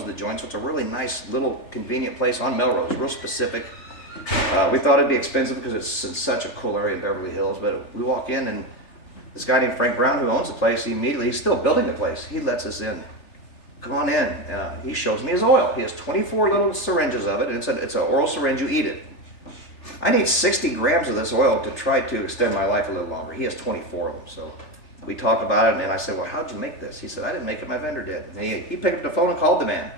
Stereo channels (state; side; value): late; right; 3.4 ms